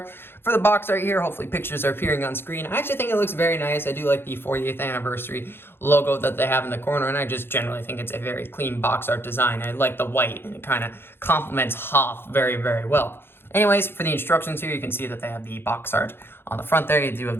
For the box art here, hopefully pictures are appearing on screen. I actually think it looks very nice. I do like the 40th anniversary logo that they have in the corner, and I just generally think it's a very clean box art design. I like the white, and it kind of complements Hoth very, very well. Anyways, for the instructions here, you can see that they have the box art on the front there. You do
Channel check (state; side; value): late; right; 0.11 ms